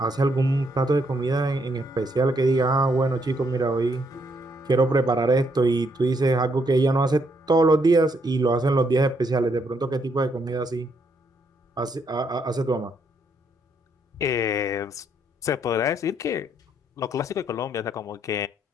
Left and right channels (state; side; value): normal; both; correlation 0.74